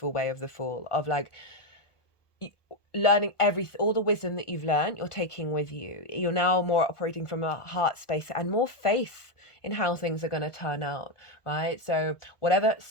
way of the Fool, of like learning all the wisdom that you've learned, you're taking with you. You're now more operating from a heart space and more faith in how things are going to turn out, right? So whatever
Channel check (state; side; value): late; right; 1.2 ms